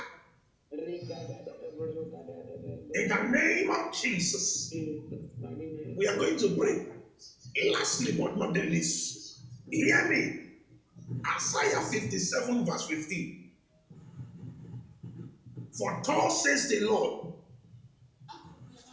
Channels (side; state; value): both; identical; correlation 1.00